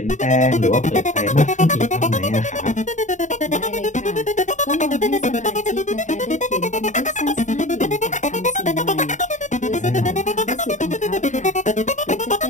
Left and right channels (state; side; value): late; right; 0.35 ms